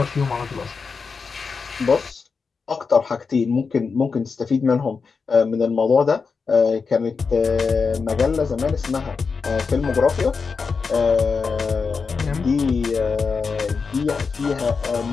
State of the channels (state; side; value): quieter; right; 5.1 dB